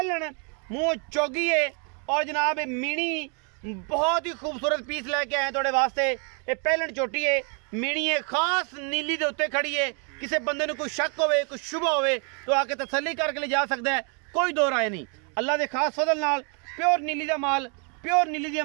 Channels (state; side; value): quieter; left; 38.0 dB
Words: मुँह चौगी है और जनाब मीणी बहुत ही खूबसूरत पीस लैके आए थोड़े वास्ते। ये पहलन चोटी है, मीणी है खास नीली के उत्ते खड़ी है। किसी बंदे को कोई शक होवे कोई शुभ होवे तो आके तसल्ली करके ले जा सकता है, कोई दो राय नहीं। अल्लाह के खास फजल नाल प्योर नीली का माल, प्योर नीली दी